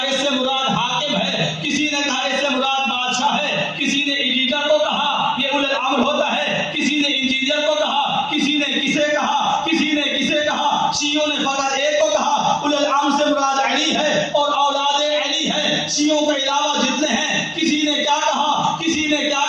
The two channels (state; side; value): identical; both; correlation 1.00